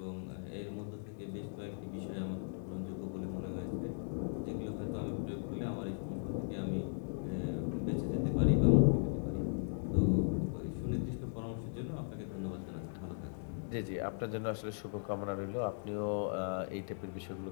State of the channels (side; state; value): right; silent; digital silence